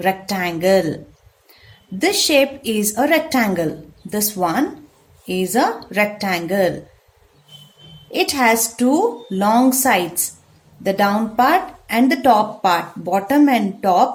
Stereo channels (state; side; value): identical; both; correlation 1.00